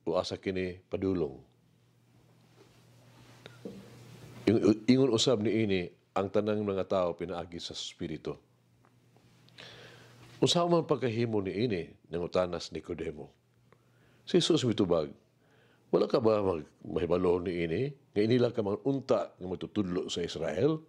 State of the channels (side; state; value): both; identical; correlation 1.00